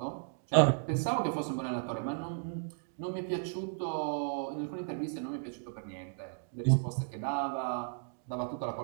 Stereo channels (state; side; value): silent; left; digital silence